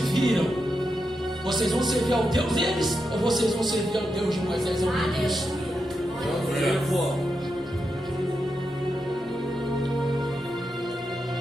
Vocês vão servir ao Deus deles? Ou vocês vão servir ao Deus de Moisés? Ao meu Deus?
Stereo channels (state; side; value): normal; both; correlation 0.86